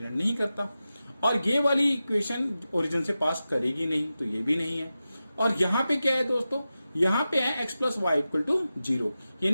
नहीं करता। और ये वाली इक्वेशन ओरिजिन से पास करेगी नहीं, तो ये भी नहीं है। और यहां पे क्या है दोस्तों? यहां पे है x + y = 0,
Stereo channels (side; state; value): both; inverted; correlation -0.93